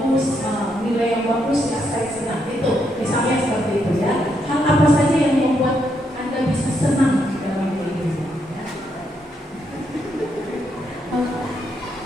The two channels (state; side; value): normal; both; correlation 0.78